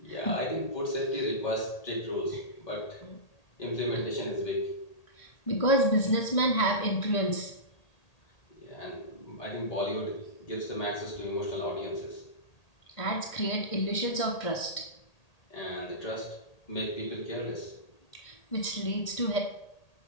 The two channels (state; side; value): late; right; 1.8 ms